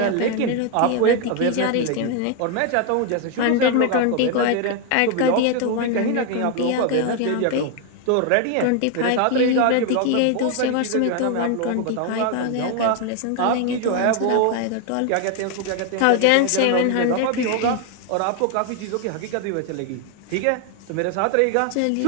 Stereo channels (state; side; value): different; both; correlation 0.01